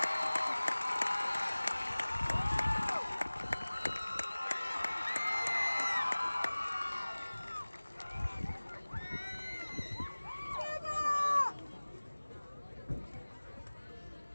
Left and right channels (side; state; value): both; inverted; correlation -1.00